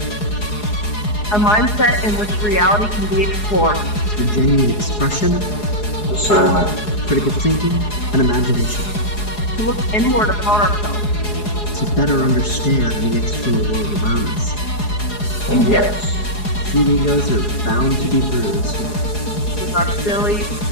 A mindset in which reality can be explored. It's a genuine expression, Discernment. critical thinking, and imagination. To look inward upon ourselves. To better understand the external world around us. And yes, Few egos are bound to be bruised. With our silly,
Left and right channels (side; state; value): right; late; 4.8 ms